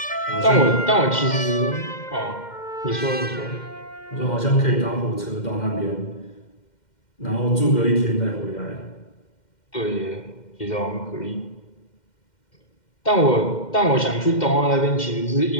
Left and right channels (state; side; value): late; right; 2.1 ms